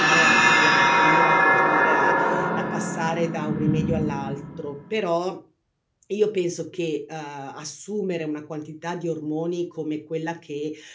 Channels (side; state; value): both; identical; correlation 1.00